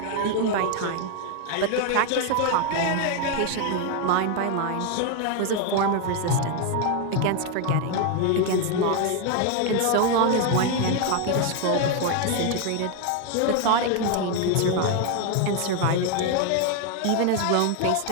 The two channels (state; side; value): different; both; correlation 0.01